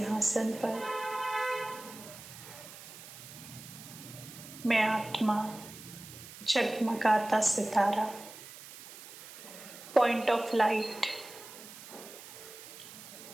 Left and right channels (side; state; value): right; noise; hiss, 15 dB below the sound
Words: पर मैं आत्मा, जगमगाता सितारा, पॉइंट ऑफ लाइट,